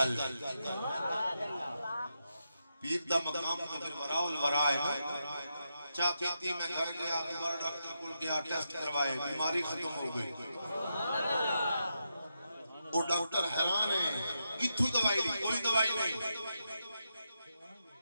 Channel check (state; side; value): inverted; both; correlation -0.86